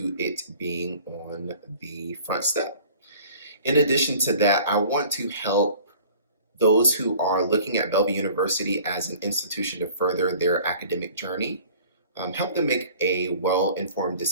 it being on the front step. In addition to that, I want to help those who are looking at Bellevue University as an institution to further their academic journey, help them make a well-informed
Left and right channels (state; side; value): inverted; both; correlation -0.47